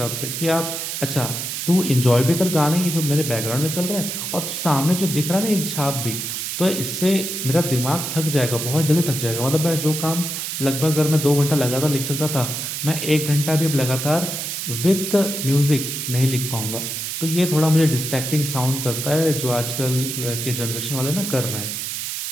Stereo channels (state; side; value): noise; right; hiss, 4 dB below the sound